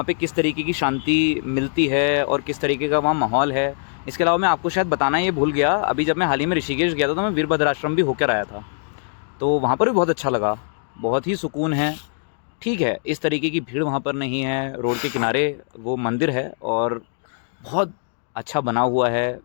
पे किस तरीके की शांति मिलती है और किस तरीके का वहाँ माहौल है। इसके अलावा मैं आपको शायद बताना ये भूल गया, अभी जब मैं हाल ही में ऋषिकेश गया था तो मैं वीरभद्र आश्रम भी होकर आया था, तो वहाँ पर भी बहुत अच्छा लगा, बहुत ही सुकून है। ठीक है, इस तरीके की भीड़ वहाँ पर नहीं है। रोड के किनारे वो मंदिर है और बहुत अच्छा बना हुआ है।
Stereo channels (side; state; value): right; silent; digital silence